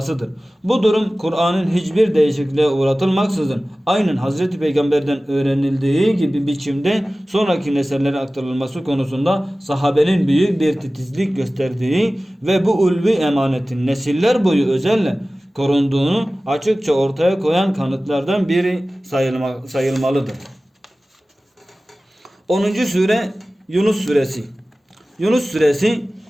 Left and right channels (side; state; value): both; normal; correlation 0.97